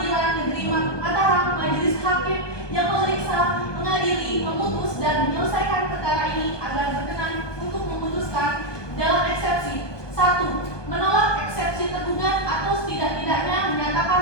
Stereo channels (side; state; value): right; late; 1.2 ms